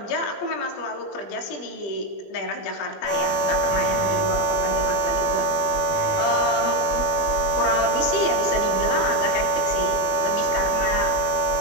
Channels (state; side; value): late; right; 20 ms